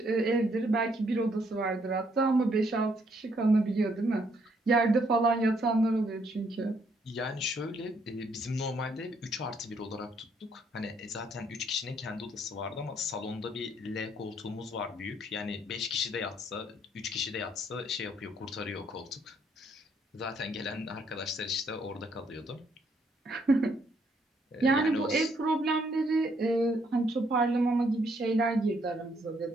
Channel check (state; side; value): normal; both; correlation 0.70